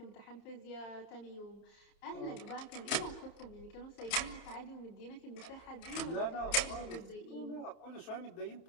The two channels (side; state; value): right; late; 31 ms